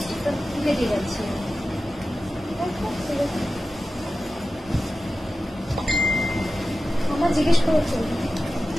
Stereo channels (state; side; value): normal; both; correlation 0.94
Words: আমার জিজ্ঞেস করেছি